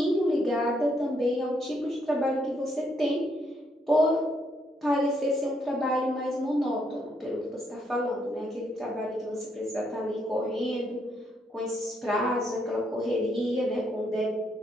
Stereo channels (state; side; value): normal; both; correlation 0.74